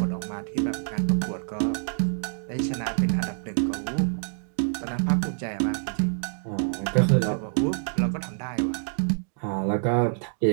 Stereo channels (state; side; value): silent; left; digital silence